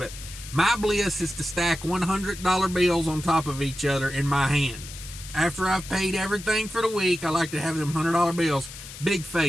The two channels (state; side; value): noise; left; hiss, 13 dB below the sound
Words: my bliss is to stack $100 bills on top of each other in my hand. After I've paid everything for the week, I like to have them $100 bills, big